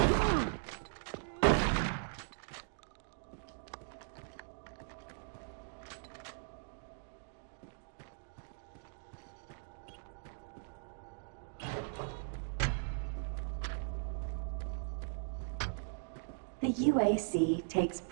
The UAC takes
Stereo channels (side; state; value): left; silent; digital silence